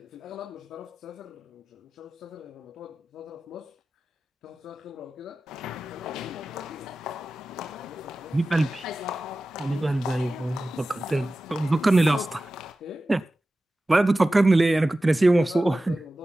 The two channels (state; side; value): normal; both; correlation 0.95